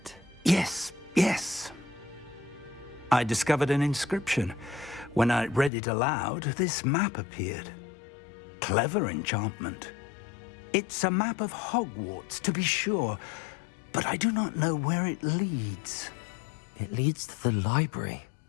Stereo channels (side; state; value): right; drops out; at 5.7 s